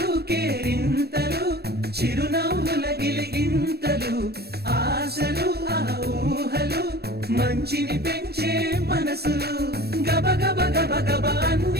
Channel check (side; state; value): left; late; 0.47 ms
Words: కేరింతలు చిరునవ్వుల గిలిగింతలు ఆశలు ఆ ఊహలు మంచిని పెంచే మనసులు గబ గబ గబ గబ